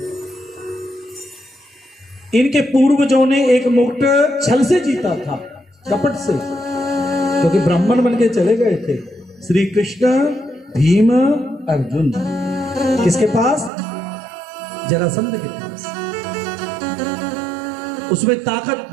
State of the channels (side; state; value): left; drops out; at 13.7 s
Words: इनके पूर्वजों ने एक मुकुट छल से जीता था, कपट से, क्योंकि ब्राह्मण बन के चले गए थे। श्री कृष्ण, भीम, अर्जुन किसके पास? जरासंध के पास। उसमें ताकत